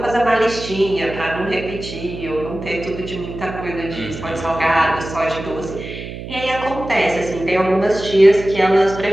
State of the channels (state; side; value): noise; right; hum, 10 dB below the sound